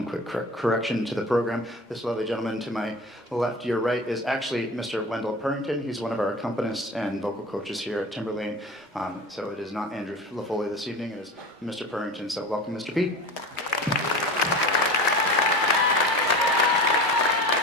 quick correction to the program. This lovely gentleman to my left, your right, is actually Mr. Wendell Purrington. He's one of our accompanists and vocal coaches here at Timberlane. So it is not Andrew LaFoley this evening, it is Mr. Purrington. So welcome, Mr. P.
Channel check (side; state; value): both; normal; correlation 0.33